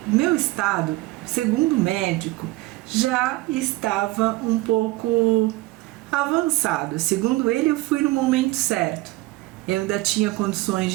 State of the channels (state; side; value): quieter; left; 19.6 dB